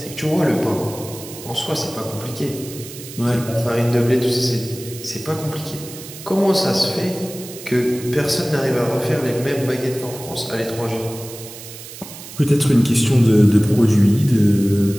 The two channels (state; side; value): noise; right; hiss, 14 dB below the sound